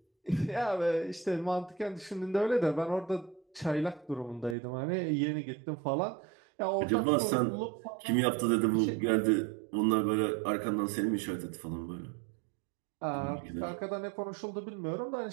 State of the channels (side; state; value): left; drops out; at 4.5 s